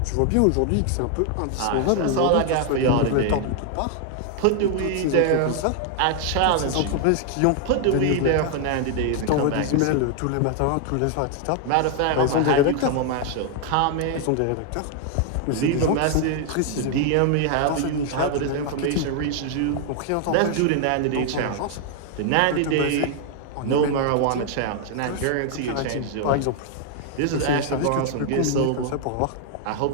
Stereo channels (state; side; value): different; both; correlation 0.00